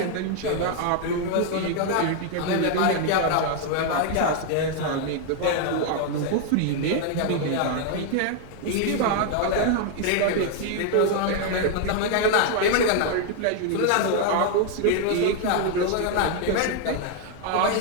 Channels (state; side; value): different; both; correlation 0.00